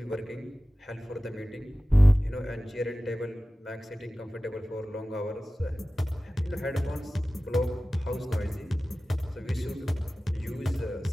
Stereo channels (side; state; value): both; normal; correlation 0.96